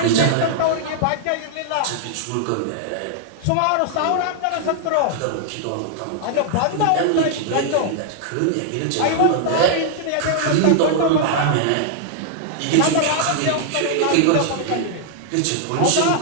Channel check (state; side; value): different; both; correlation -0.01